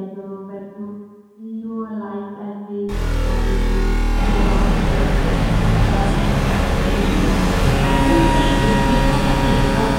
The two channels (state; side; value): identical; both; correlation 1.00